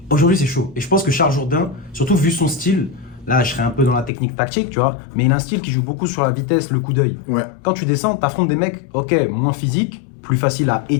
Aujourd'hui, c'est chaud. Et je pense que Charles Jourdain, surtout vu son style, là, je serais un peu dans la technique tactique, tu vois, mais il a un style qui joue beaucoup sur la vitesse, le coup d'œil. Ouais, Quand tu descends, t'affrontes des mecs, ok, moins physiques, plus facile à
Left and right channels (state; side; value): drops out; right; at 4.1 s